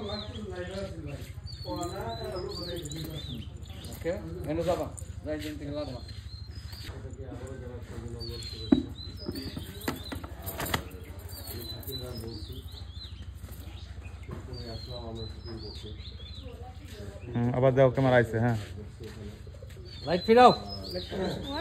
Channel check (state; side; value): identical; both; correlation 1.00